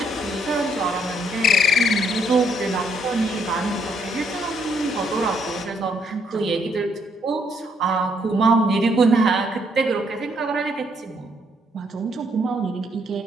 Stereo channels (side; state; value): both; normal; correlation 0.71